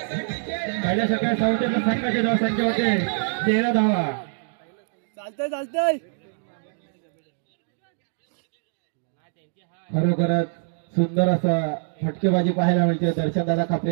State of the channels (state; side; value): silent; left; digital silence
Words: पहिल्या षटकात साऊथच्या संघाची धावसंख्या होते 13 धावा. चालतंय खरोखरच सुंदर असा फटकेबाजी पाहायला मिळते दर्शनदादा खापरे